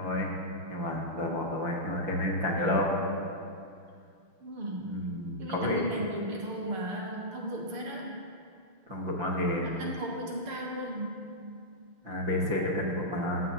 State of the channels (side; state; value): left; late; 6.7 ms